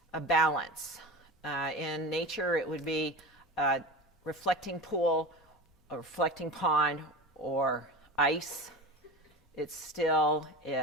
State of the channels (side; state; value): both; normal; correlation 0.30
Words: a balance. In nature, it would be a reflecting pool, a reflecting pond, or ice. It's still,